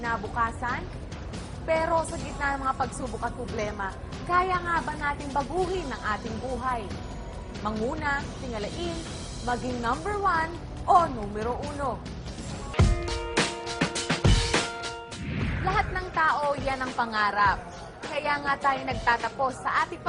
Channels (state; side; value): identical; both; correlation 1.00